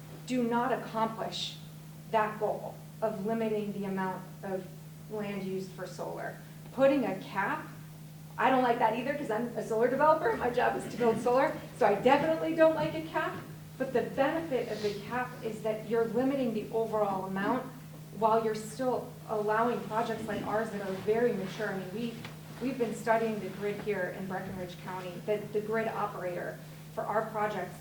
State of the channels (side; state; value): both; identical; correlation 1.00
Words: do not accomplish that goal of limiting the amount of land used for solar. Putting a cap, I don't like that either, because I'm a solar developer. My job is to build solar, so I definitely don't like a cap. But the benefit of the cap is that you're limiting the overall amount while you're still allowing projects like ours that are very mature. I mean, we've been studying the grid here in Breckinridge County, the grid operator for our project